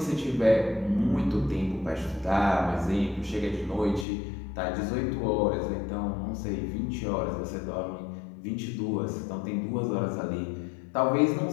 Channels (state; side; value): drops out; right; at 4.0 s